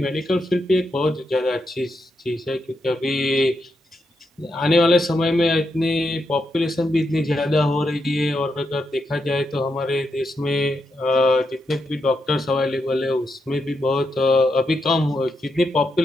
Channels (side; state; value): both; normal; correlation 0.83